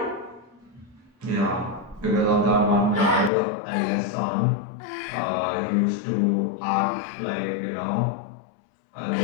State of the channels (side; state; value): right; drops out; at 3.3 s